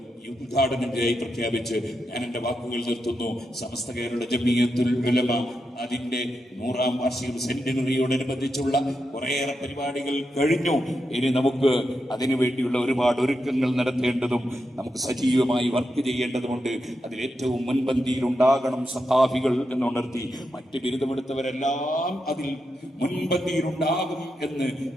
ഉദ്ഘാടനത്തിനായി പ്രഖ്യാപിച്ച് ഞാൻ എന്റെ വാക്കുകൾ നിർത്തുന്നു. സമസ്ത കേരള ജമിയത്തുൽ ഉലമ അതിന്റെ 100ാം വാർഷിക സെന്റിനറിയോടനുബന്ധിച്ചുള്ള കുറേയേറെ പരിപാടികൾ കഴിഞ്ഞു. ഇനി നമുക്ക് അതിനു വേണ്ടിയുള്ള ഒരുപാട് ഒരുക്കങ്ങൾ നടത്തേണ്ടതും നമുക്ക് സജീവമായി വർക്ക് ചെയ്യേണ്ടതുമുണ്ട്. അതിലേറ്റവും മുൻപന്തിയിൽ ഉണ്ടാകണം സഖാഫികൾ എന്നുണർത്തി മറ്റ് ബിരുദമെടുത്തവരെല്ലാം അതിൽ മുൻപന്തിയിലുണ്ടാകും എന്ന്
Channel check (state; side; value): normal; both; correlation 0.86